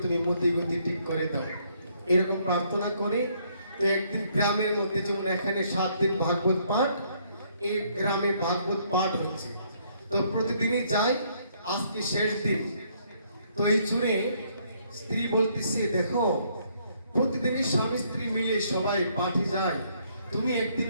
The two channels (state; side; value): inverted; both; correlation -0.68